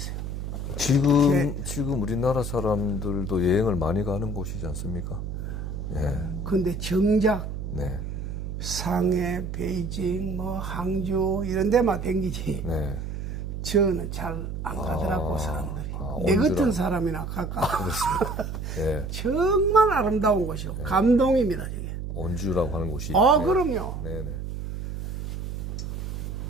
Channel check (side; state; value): right; noise; hum, 5 dB below the sound